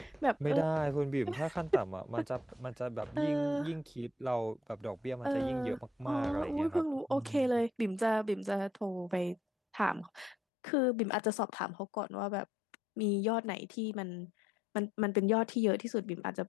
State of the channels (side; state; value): right; drops out; at 10.4 s